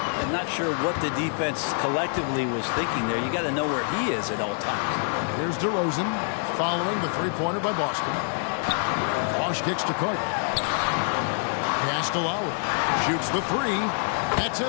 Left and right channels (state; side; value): silent; right; 61 dB below the other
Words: I'm not sure what the defense collectively was thinking there. You got to know where he is at all times. Here's DeRozan following the three-pointer by Boston. Bosch kicks to Carter. Pass to Lowry. Shoots the three. That's